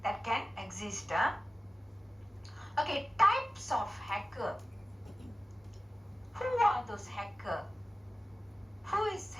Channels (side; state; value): both; normal; correlation 0.96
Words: can exist. Okay, types of hacker. Who are those hacker? Who is